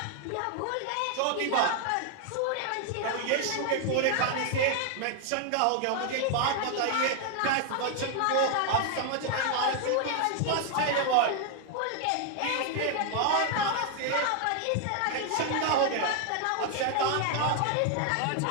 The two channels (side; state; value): both; different; correlation 0.00